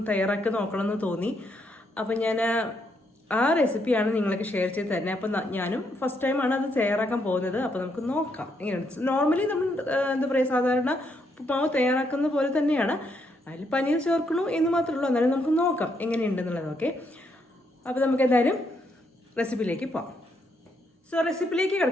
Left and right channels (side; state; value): both; normal; correlation 0.76